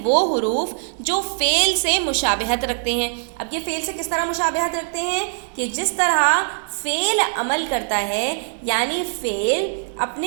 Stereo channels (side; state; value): left; silent; 64 dB below the other